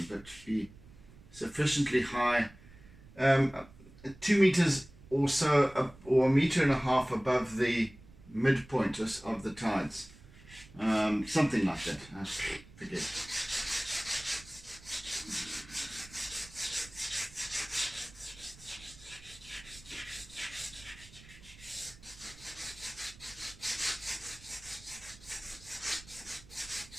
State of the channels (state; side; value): noise; right; rumble, 21 dB below the sound